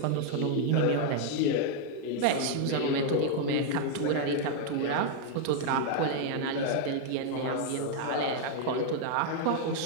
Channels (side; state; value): both; different; correlation 0.00